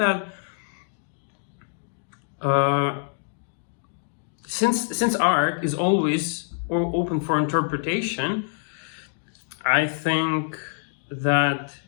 since art is always open for interpretation, I think that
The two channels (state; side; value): silent; right; digital silence